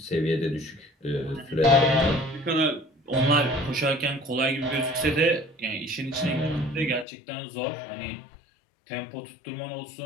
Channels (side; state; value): right; drops out; at 7.1 s